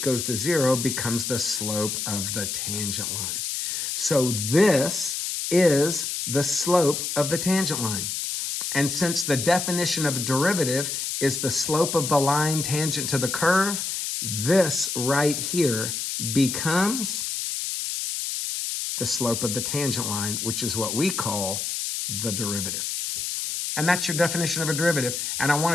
goes to zero becomes the slope of the tangent line. So this is the slope of the tangent line. And since the definition of a derivative is the slope of the line tangent to the curve, this right here becomes the slope of the tangent line, which is what we call the derivative. And that's your definition of a derivative. And I want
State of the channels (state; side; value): noise; left; hiss, 3 dB below the sound